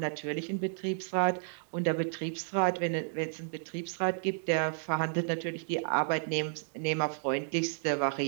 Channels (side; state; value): left; silent; digital silence